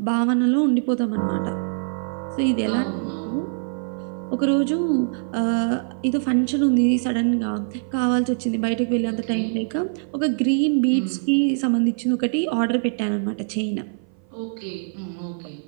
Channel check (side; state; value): left; silent; 57 dB below the other